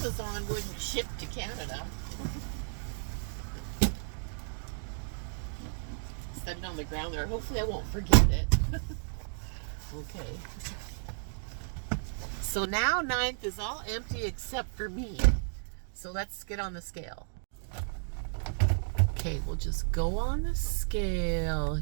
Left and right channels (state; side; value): silent; left; digital silence